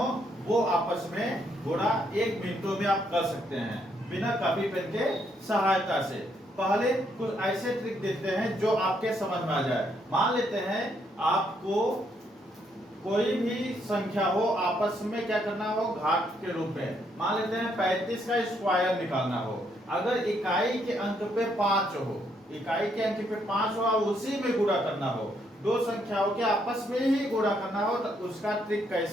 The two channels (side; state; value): both; normal; correlation 0.73